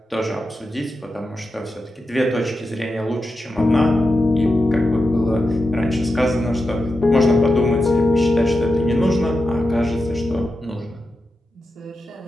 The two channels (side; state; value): both; normal; correlation 0.90